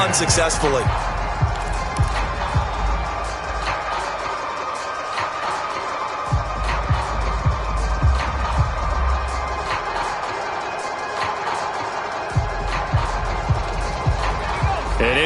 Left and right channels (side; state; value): both; identical; correlation 1.00